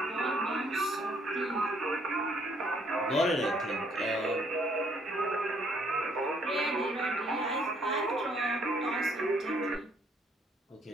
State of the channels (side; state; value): both; normal; correlation 0.66